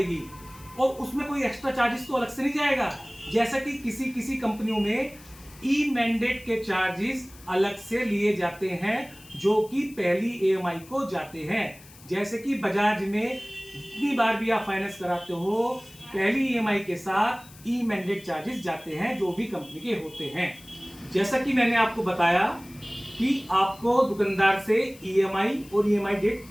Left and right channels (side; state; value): left; noise; hiss, 22 dB below the sound